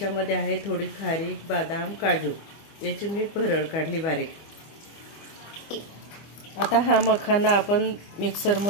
आहे थोडी खारीक, बदाम, काजू। याची मी भरड काढली बारीक। आता हा मखाना आपण मिक्सर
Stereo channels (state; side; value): late; right; 25 ms